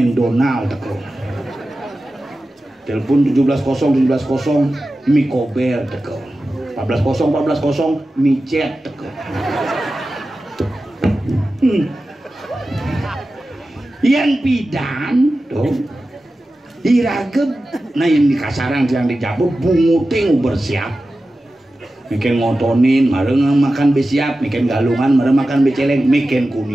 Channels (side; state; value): both; normal; correlation 0.94